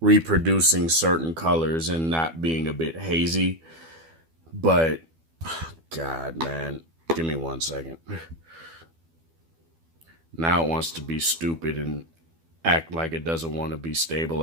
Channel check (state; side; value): late; left; 12 ms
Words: certain colors and not being a bit hazy. But God, man, give me 1 second. Now it wants to be stupid and act like it doesn't want to be